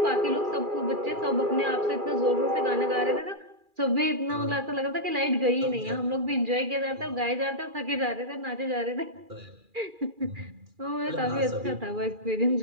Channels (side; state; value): left; late; 2.4 ms